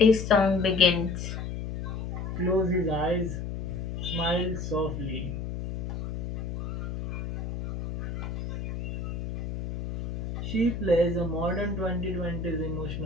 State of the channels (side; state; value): left; noise; hum, 5 dB below the sound